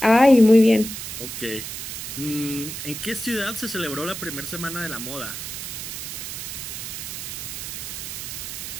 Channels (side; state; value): right; noise; hiss, 7 dB below the sound